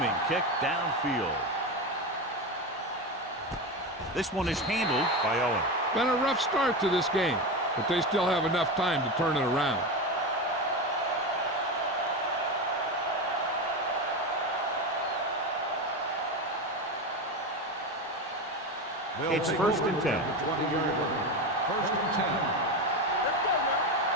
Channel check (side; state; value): both; normal; correlation 0.19